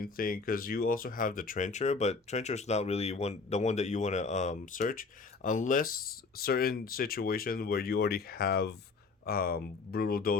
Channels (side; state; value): right; quieter; 4.4 dB